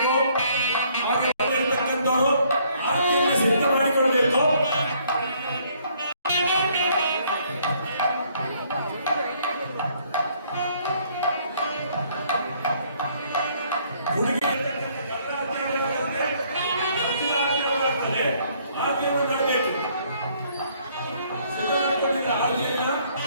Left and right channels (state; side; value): inverted; both; correlation -0.64